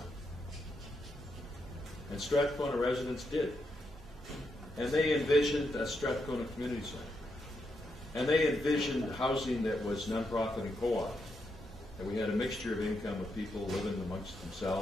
And Strathcona residents did. And they envisioned a Strathcona Community Center. And they envisioned housing that was nonprofit and co-op. And we had a mixture of income of people living amongst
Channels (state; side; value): normal; both; correlation 0.82